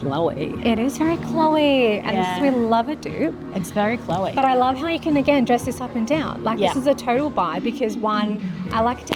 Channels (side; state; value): both; identical; correlation 1.00